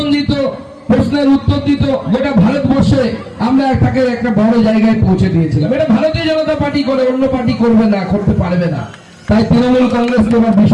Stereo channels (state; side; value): identical; both; correlation 1.00